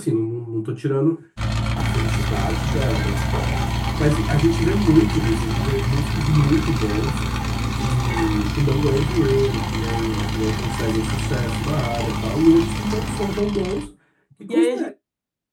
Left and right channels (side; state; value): both; identical; correlation 1.00